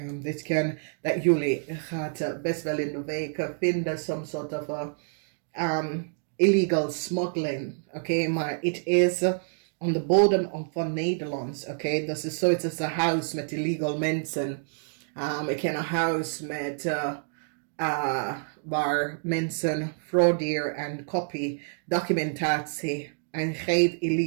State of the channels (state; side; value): silent; left; digital silence